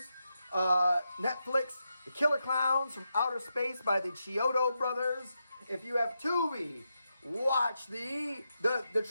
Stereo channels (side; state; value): both; inverted; correlation -0.86